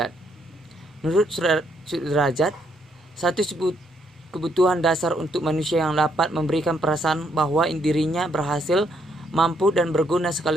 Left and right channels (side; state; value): both; normal; correlation 0.73